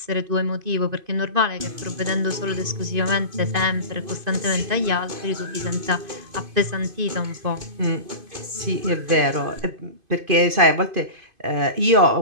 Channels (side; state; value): left; late; 2.5 ms